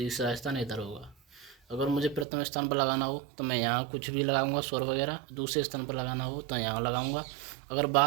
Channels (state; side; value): drops out; left; at 2.2 s